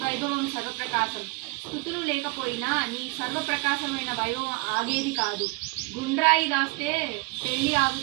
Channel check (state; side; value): quieter; left; 26.5 dB